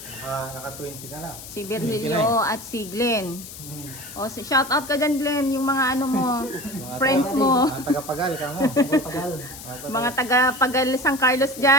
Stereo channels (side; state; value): left; noise; hiss, 13 dB below the sound